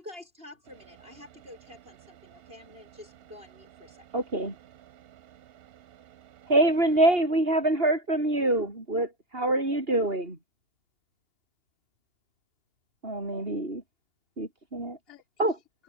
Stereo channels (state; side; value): late; left; 2.8 ms